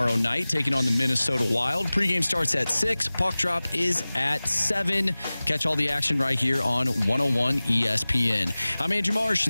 night, taking on the Minnesota Wild. Pregame starts at 6. Puck drop is at 7. Catch all the action right here on 101 ESPN. I'm Andrew Marsh,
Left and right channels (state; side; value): inverted; both; correlation -0.99